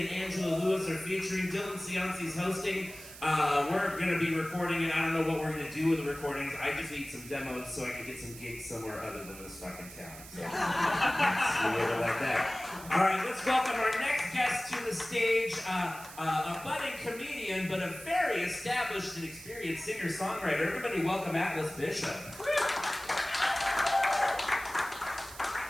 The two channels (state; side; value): noise; right; hiss, 15 dB below the sound